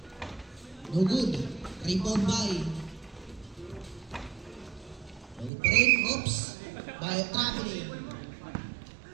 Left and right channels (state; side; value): drops out; left; at 5.5 s